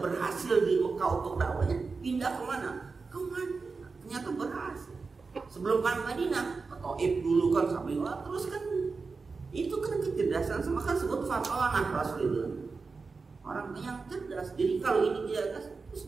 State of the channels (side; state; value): left; quieter; 4.4 dB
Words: berhasil di Mekah untuk dakwahnya, pindah kemana? Ke Madinah. Ternyata berhasil. Sebelum kan Madinah, Taif dulu kan sampai terus kan itu kan kecerdasan sama kan sebut fatonah Rasul itu orang yang cerdas. Jadi kalau ini dia terus